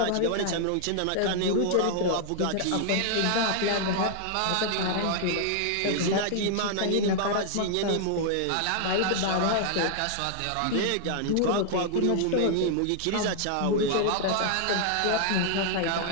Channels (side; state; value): both; different; correlation 0.00